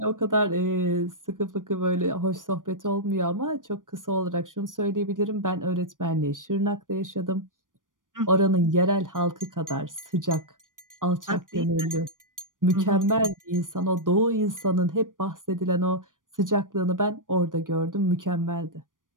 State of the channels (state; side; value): late; left; 0.88 ms